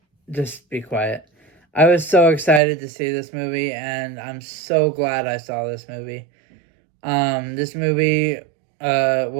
Just be quiet. I was so excited to see this movie, and I'm so glad I saw this movie. This movie,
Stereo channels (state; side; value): drops out; left; at 2.6 s